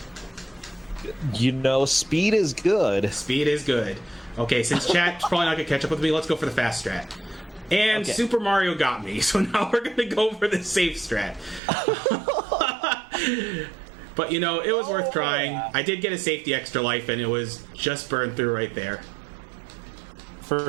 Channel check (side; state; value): left; drops out; at 11.6 s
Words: You know, speed is good. Speed is good. Okay, since chat's probably not going to catch up with me, let's go for the fast strat. And okay. Super Mario got me, so now we're going to go for the safe strat. But, you know, it was worth trying. I did get a safety extra life, and it was just burned through right there.